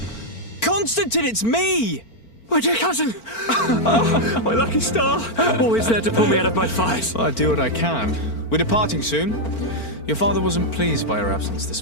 Constantine, it's me! My dear cousin! Oh, my lucky star! Always there to pull me out of my fight. I do what I can. We're departing soon. Your father wasn't pleased by our absence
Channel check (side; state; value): right; late; 4.4 ms